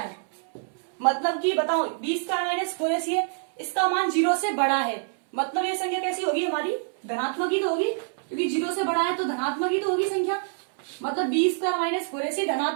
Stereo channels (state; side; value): silent; left; 61 dB below the other